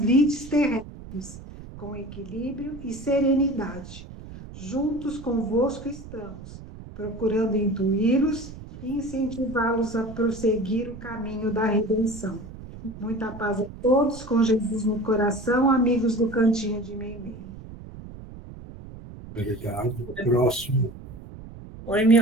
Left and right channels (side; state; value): right; noise; rumble, 14 dB below the sound